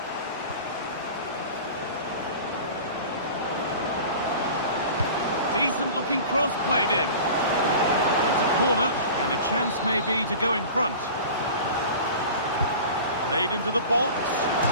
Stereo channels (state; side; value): inverted; both; correlation -0.38